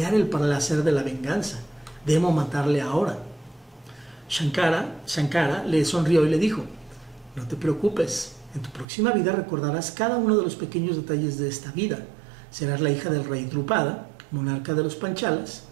el placer de la venganza. Debo matarle ahora. Shankara le sonrió y le dijo, no te preocupes, en tu próxima vida recordarás cada uno de los pequeños detalles de esta vida. Serás la hija del rey Drupada, monarca de los Panchalas,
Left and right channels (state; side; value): drops out; left; at 8.8 s